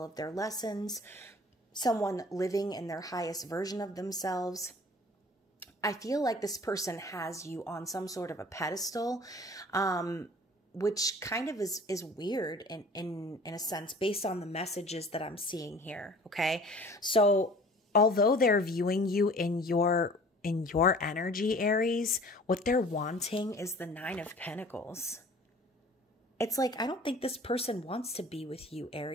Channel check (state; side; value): normal; both; correlation 0.47